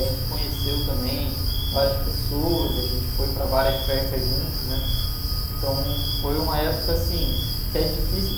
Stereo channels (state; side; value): identical; both; correlation 1.00